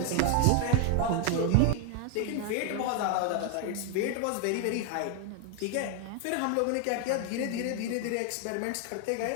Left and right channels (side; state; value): both; different; correlation 0.00